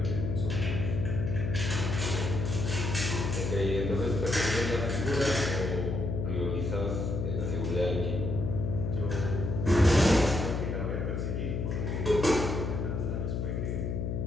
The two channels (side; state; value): left; noise; hum, 1 dB below the sound